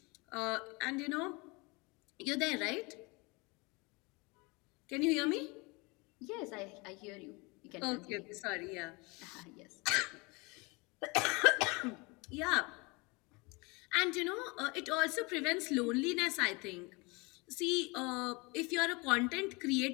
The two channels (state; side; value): quieter; right; 27.2 dB